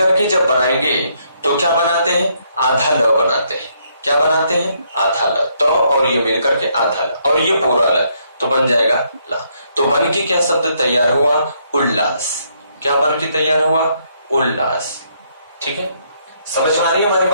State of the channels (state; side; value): inverted; both; correlation -0.72